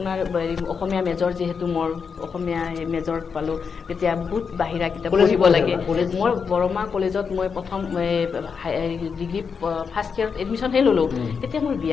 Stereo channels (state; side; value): quieter; right; 5.9 dB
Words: অসমীয়া মেজৰ যিহেতু মোৰ অসমীয়া মেজৰ পালোঁ তেতিয়া বহুত বাহিৰা কিতাপ পঢ়িব লাগে মই বৰমা কলেজত মই প্ৰথম ডিগ্ৰী ফাৰ্ষ্ট ইয়াৰত এডমিশ্যনহে ল'লোঁ তেতিয়া মোৰ